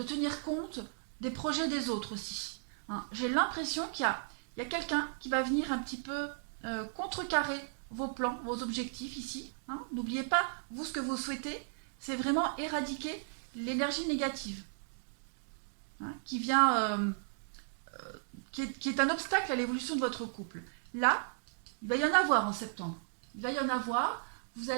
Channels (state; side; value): silent; left; digital silence